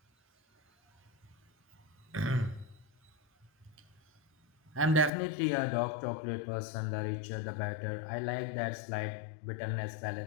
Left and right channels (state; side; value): drops out; right; at 5.1 s